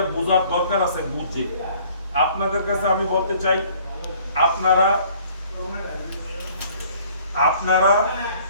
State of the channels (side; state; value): both; inverted; correlation -0.56